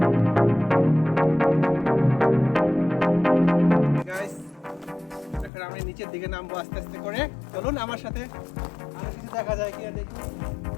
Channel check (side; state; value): right; drops out; at 5.5 s